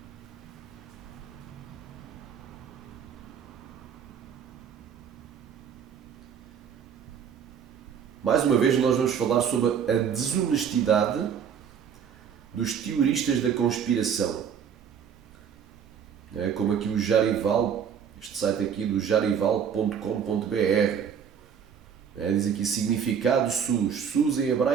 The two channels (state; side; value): quieter; left; 7.7 dB